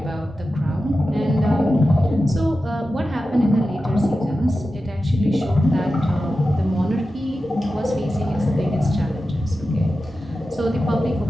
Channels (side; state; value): both; normal; correlation 0.92